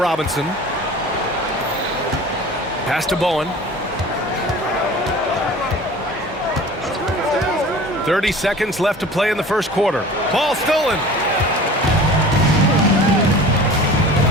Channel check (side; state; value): both; normal; correlation 0.41